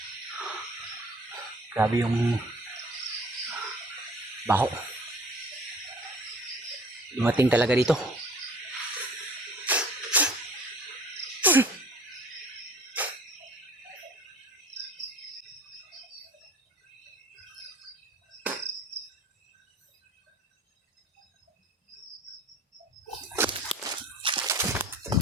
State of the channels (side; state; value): both; normal; correlation 0.47